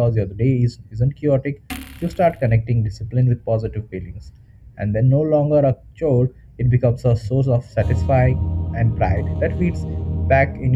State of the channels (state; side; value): identical; both; correlation 1.00